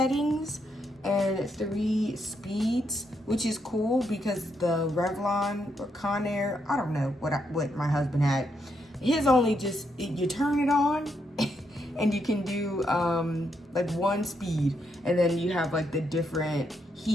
and 3 speeds, which is cool because the Revlon or Conair, I don't know what my husband had. His only just, you turn it on and you can do like 1 speed, and then you have like the different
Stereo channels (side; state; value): both; normal; correlation 0.78